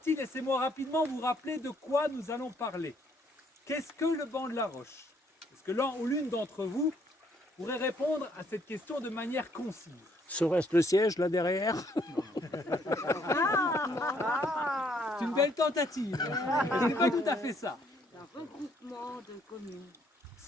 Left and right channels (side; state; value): both; normal; correlation 0.68